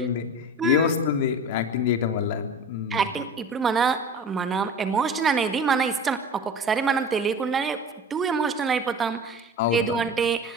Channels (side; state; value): both; normal; correlation 0.35